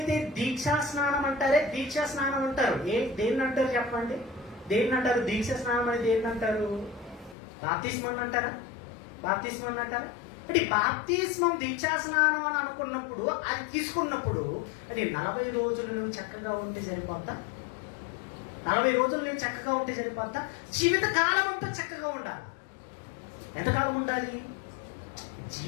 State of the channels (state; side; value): drops out; right; at 7.4 s